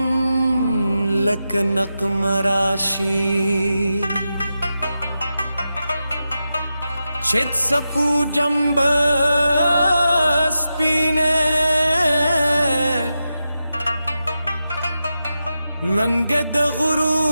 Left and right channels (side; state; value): both; inverted; correlation -0.90